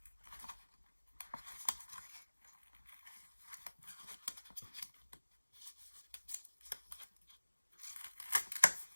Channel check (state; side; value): inverted; both; correlation -1.00